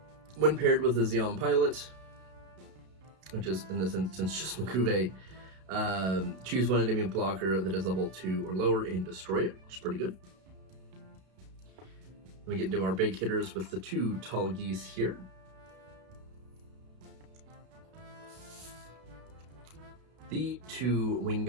when paired with a Zeon pilot, which is in this instance just Makuve. Choose 1 enemy blocker that is level 2 or lower and destroy it, which is pretty good. We get into our big hitters with the 2 Tall Geese here. The 2 Wing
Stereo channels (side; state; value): left; late; 32 ms